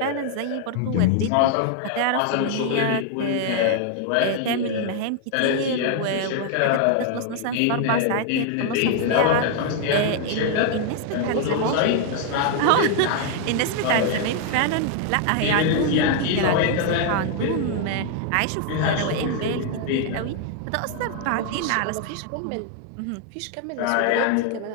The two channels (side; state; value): both; different; correlation 0.00